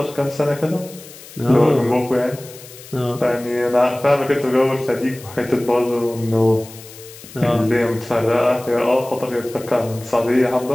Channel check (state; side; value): noise; left; hiss, 18 dB below the sound